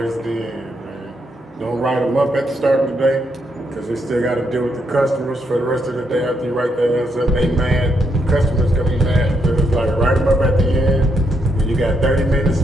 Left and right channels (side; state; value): both; normal; correlation 0.78